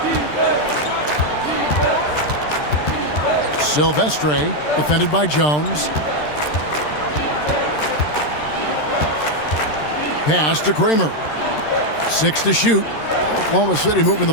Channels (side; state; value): right; late; 13 ms